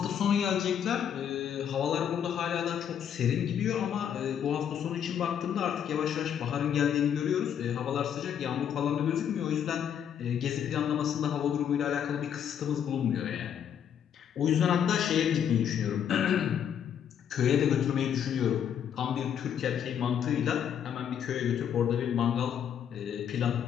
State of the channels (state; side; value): quieter; right; 8.8 dB